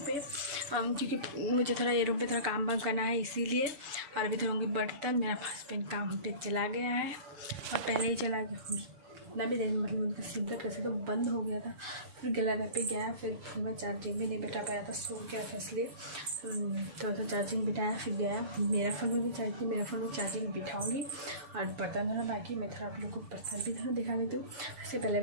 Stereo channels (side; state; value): left; late; 7.0 ms